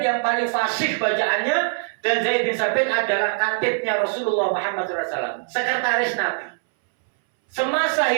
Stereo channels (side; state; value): left; silent; 64 dB below the other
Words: yang paling fasih bacaannya, dan Zaid bin Sabit adalah katibnya Rasulullah Muhammad SAW, sekretaris Nabi. Semasa